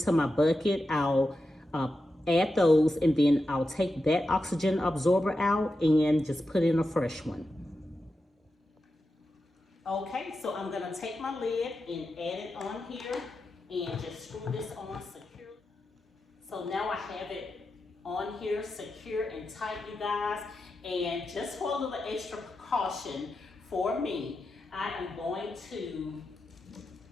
to my bucket, I'll add those, and then I'll take that oxygen absorber out and just put in a fresh one. Okay, so I'm gonna take my lid and add it on here and just screw this on secure. So now I have it on here secure and tight, you guys. And just for a little extra precaution for me, I am going to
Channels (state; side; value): normal; both; correlation 0.89